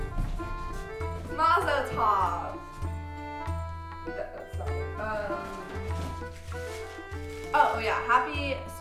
Mazel tov. That's not right. Oh yeah, happy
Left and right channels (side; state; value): both; identical; correlation 1.00